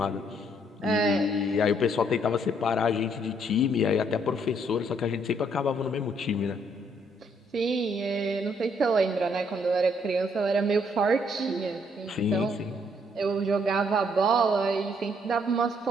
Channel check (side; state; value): both; normal; correlation 0.69